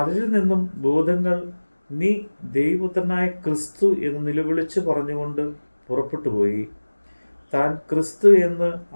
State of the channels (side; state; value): both; inverted; correlation -1.00